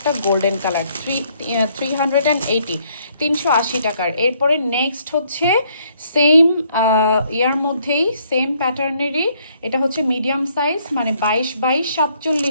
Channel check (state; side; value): inverted; both; correlation -0.68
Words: গোল্ডেন কালার। 380, 380 টাকার। এরপরে নেক্সট হচ্ছে সেম ইয়ার মধ্যেই সেম প্যাটার্নেরই, এটা হচ্ছে মিডিয়াম সাইজ, মানে